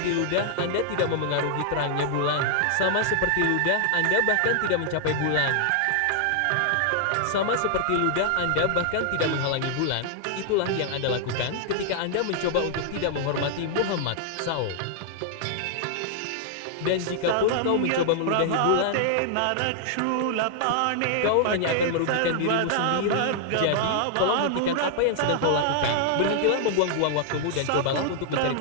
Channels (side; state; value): both; different; correlation -0.01